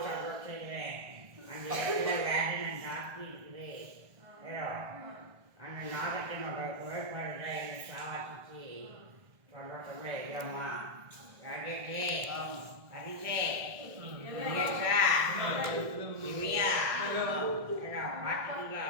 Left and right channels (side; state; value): left; late; 1.7 ms